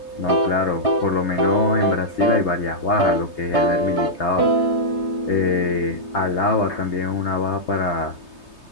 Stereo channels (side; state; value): right; late; 3.2 ms